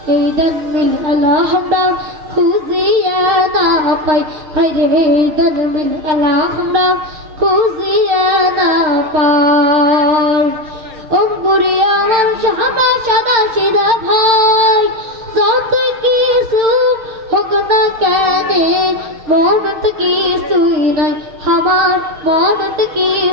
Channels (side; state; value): left; late; 6.5 ms